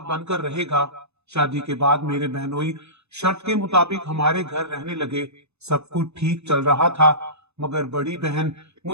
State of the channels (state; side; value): late; left; 0.80 ms